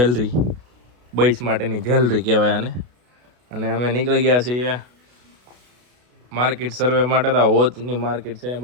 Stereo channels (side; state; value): left; late; 33 ms